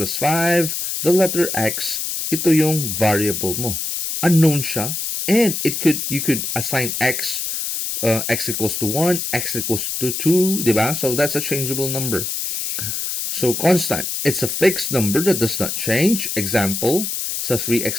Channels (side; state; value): left; noise; hiss, 3 dB below the sound